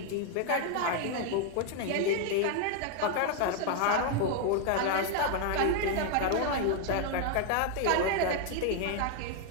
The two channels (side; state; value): both; different; correlation 0.01